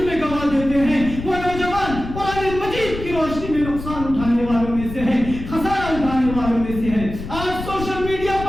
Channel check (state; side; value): noise; left; rumble, 9 dB below the sound